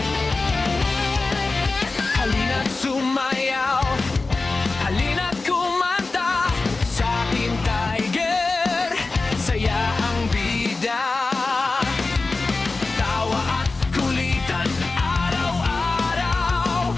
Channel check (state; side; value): quieter; right; 3.6 dB